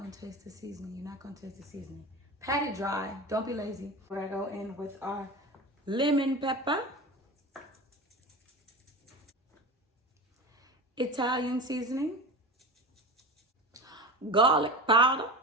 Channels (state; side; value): normal; both; correlation 0.29